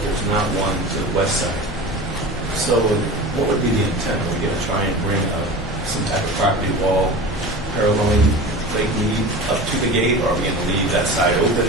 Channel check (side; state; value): both; normal; correlation 0.33